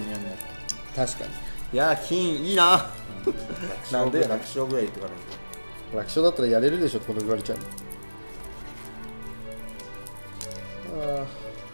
やんなって。確かに。いやー、金いいな。なんで楽勝ぐらい言ってからね。楽勝だったらやれるでしょってこと言われちゃうの。あ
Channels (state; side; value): inverted; both; correlation -1.00